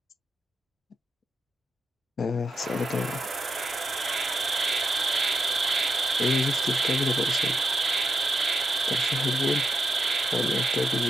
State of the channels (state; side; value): normal; both; correlation 0.82